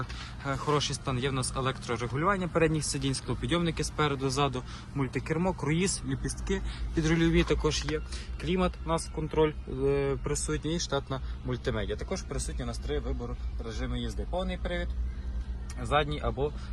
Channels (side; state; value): both; identical; correlation 1.00